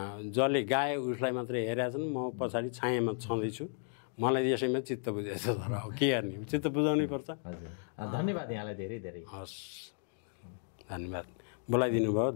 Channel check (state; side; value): silent; right; 55 dB below the other